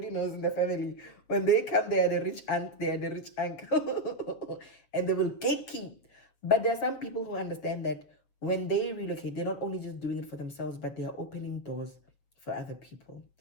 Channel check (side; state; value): right; late; 7.3 ms